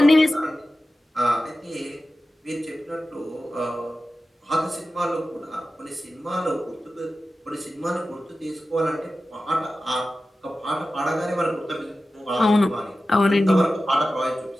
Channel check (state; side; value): normal; both; correlation 0.94